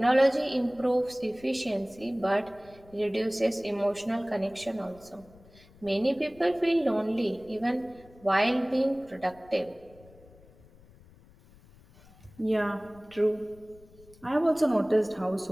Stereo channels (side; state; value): left; noise; rumble, 25 dB below the sound